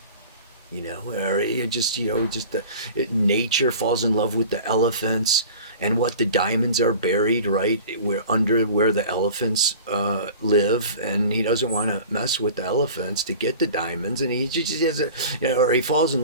or it just the nature falls in love with the elephants, and what the diamonds are buried right where the elephants live, and he doesn't want to mess with the elephants to get the diamonds, and he just has or he falls in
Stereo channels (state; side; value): inverted; both; correlation -0.40